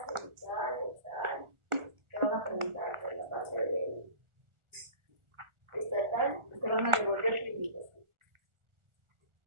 cervical, dorsal. Te van a preguntar por la parte de estatal, te van a devolver tu invitación.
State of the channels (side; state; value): left; late; 1.4 ms